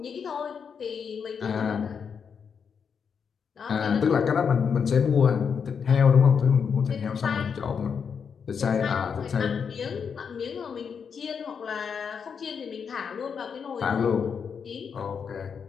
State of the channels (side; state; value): right; quieter; 6.6 dB